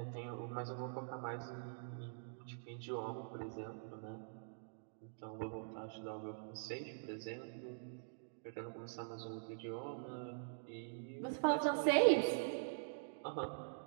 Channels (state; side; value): silent; left; digital silence